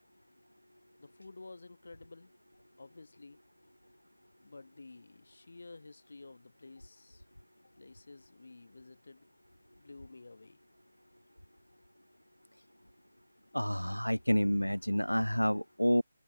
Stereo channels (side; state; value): both; inverted; correlation -1.00